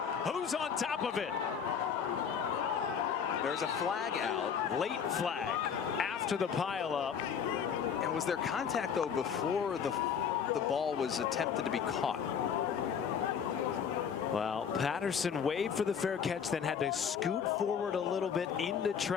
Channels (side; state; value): right; quieter; 7.3 dB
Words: Who's on top of it? There's a flag out. Late flag after the pileup. And was there contact, though, before the ball was attempted to be caught? Well, Patterson waved for the fair catch, then had to scoot forward a little bit into